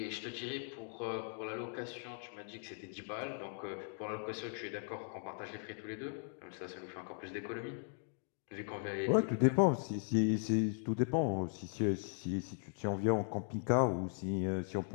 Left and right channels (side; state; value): right; silent; 52 dB below the other